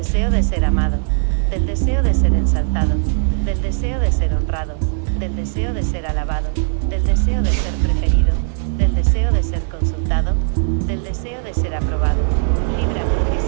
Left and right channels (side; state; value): left; silent; 56 dB below the other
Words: de ser amado, del deseo de ser ensalzado, del deseo de ser honrado, del deseo de ser alabado, del deseo de ser preferido, del deseo de ser consultado, del deseo de ser aprobado. Líbrame,